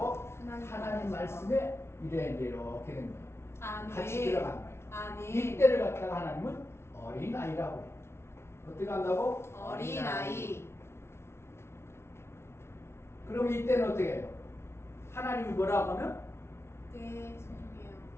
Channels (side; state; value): right; late; 0.12 ms